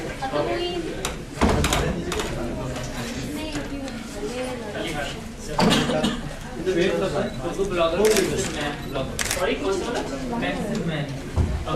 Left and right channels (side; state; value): both; identical; correlation 1.00